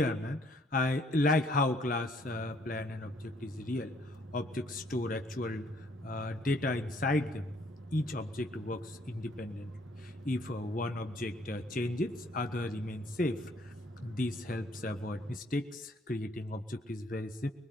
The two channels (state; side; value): normal; both; correlation 0.64